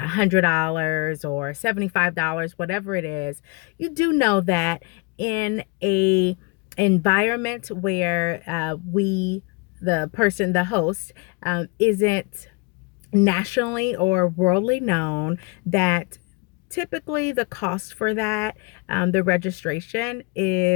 or $75, whatever it is, you do know that in a environment where the host, isn't nationally or worldly known, that typically the cost for that, the registration,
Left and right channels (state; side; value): quieter; right; 27.7 dB